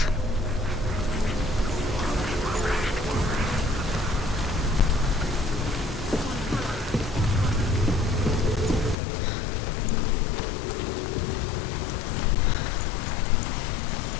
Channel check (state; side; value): drops out; right; at 9.0 s